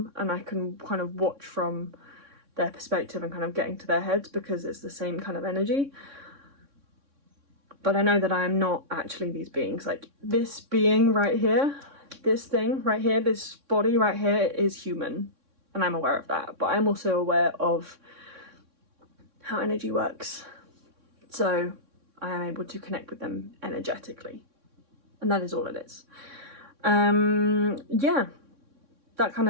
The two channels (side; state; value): left; late; 3.6 ms